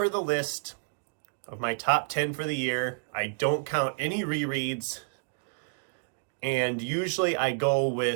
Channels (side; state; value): left; silent; digital silence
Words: the list of my top 10 for the year, I don't count any rereads. And usually I go